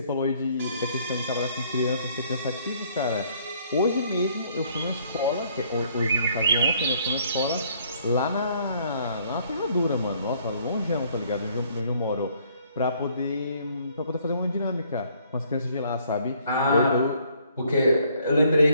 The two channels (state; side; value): inverted; both; correlation -0.64